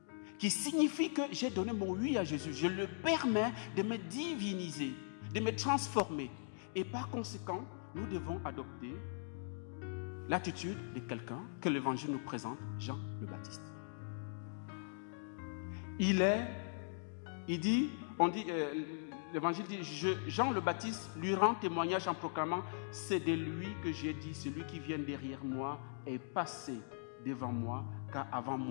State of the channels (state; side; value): silent; right; digital silence